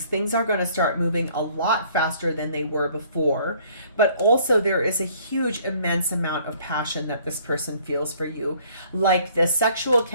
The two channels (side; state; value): both; inverted; correlation -0.59